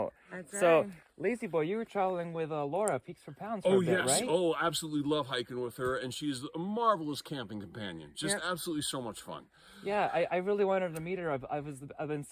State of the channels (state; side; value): identical; both; correlation 1.00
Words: That's right. So, Lazy Boy, you were traveling with Laura, Peaks for Pounds for a bit, right? Oh, absolutely love hiking with her, and she's a marvelous camping companion. Just absolutely so much fun. Yeah, I really wanted to meet her. I've been